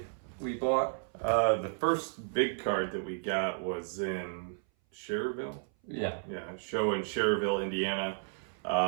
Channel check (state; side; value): silent; left; 56 dB below the other